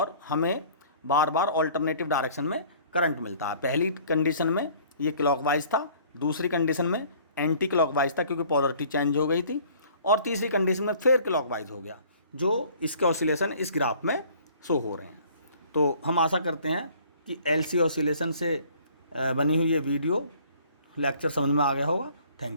हमें बार बार ऑल्टरनेटिव डायरेक्शन में करंट मिलता है। पहली कंडीशन में ये क्लॉकवाइज था, दूसरी कंडीशन में एंटी क्लॉकवाइज था क्योंकि पोलरिटी चेंज हो गई थी, और तीसरी कंडीशन में फिर क्लॉकवाइज हो गया, जो इसके ऑसिलेशन इस ग्राफ में शो हो रहे हैं। तो हम आशा करते हैं कि एलसी ऑसिलेशन से बनी हुई ये वीडियो लेक्चर समझ में आ गया होगा।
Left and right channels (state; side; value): inverted; both; correlation -0.53